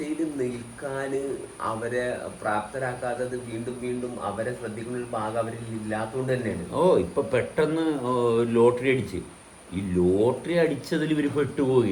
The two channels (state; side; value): identical; both; correlation 1.00